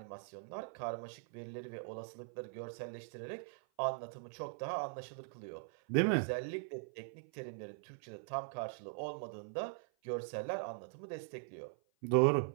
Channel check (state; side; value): silent; left; 50 dB below the other